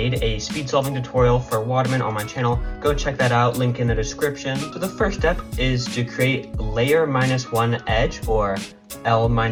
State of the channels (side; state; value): both; identical; correlation 1.00